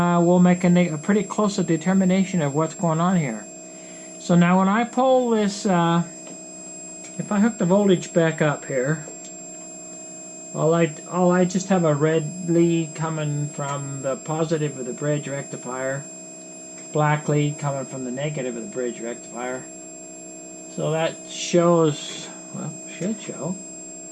we'll make a pretty close determination of what's going on here. So now when I pull this, if I hook the voltage back up here, I just have a red lead coming from the positive of the bridge rectifier, black lead coming from the negative of the bridge rectifier. So that shows, well, should show.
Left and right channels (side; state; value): both; identical; correlation 1.00